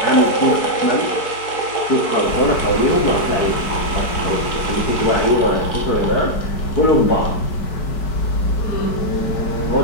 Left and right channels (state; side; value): late; right; 4.6 ms